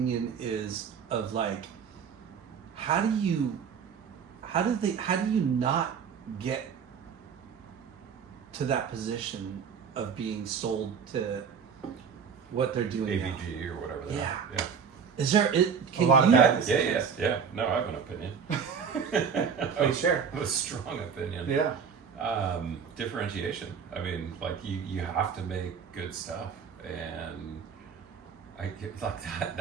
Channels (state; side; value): quieter; left; 6.7 dB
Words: is of, like, how do you not get to that position of being sold to what they're doing now? AVG or whatever. They Yeah. are. Yeah. Is there can A lot of you, bad Yeah. No, I have an opinion. Please share. A strong opinion. Yeah. Differentiation. I mean, like you have to make good stuff, and I get like